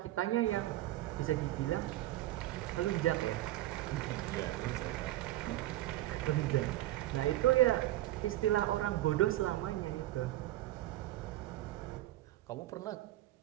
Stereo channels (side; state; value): left; quieter; 15.5 dB